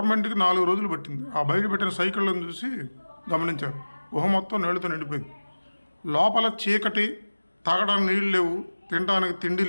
4 రోజులు పట్టింది. ఆ బయట పెట్టిన సైకిళ్ళను చూసి గమనించారు. గుహ మొత్తం నీళ్ళతో నిండిపోయింది. లోపల చీకటి, తాగడానికి నీళ్ళు లేవు, తినడానికి తిండి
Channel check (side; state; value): both; inverted; correlation -1.00